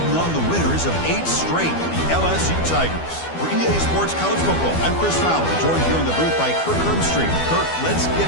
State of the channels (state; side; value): late; right; 12 ms